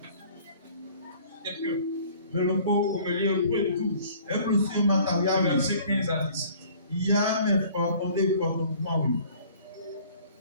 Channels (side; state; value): both; inverted; correlation -0.52